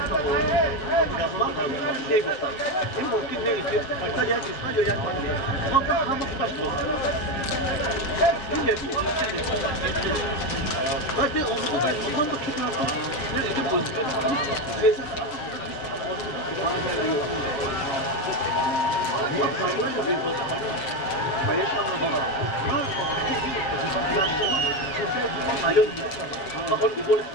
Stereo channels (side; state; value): right; late; 7.5 ms